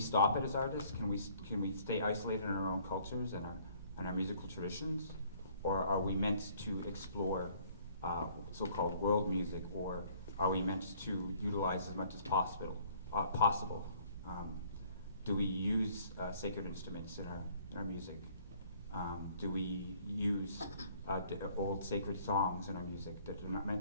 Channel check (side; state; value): both; inverted; correlation -0.59